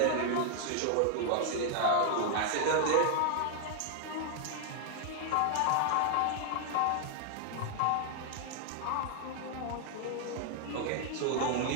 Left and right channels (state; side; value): different; both; correlation 0.00